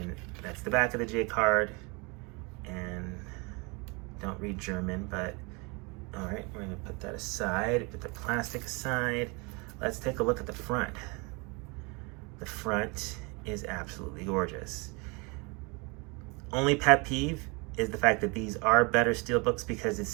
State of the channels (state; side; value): quieter; left; 29.5 dB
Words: that's the back of the J card. And don't read German, but all right, we're gonna put that aside, put the plastic aside. Let's take a look at the front. The front is absolutely gorgeous. Only pet peeve is the fact that these are better Steelbooks because it